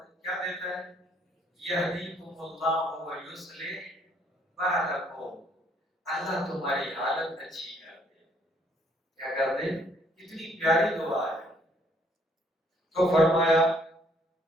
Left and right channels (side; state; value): both; normal; correlation 0.65